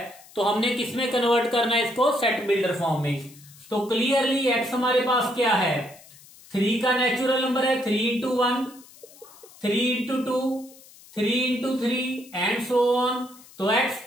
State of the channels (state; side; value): noise; left; hiss, 23 dB below the sound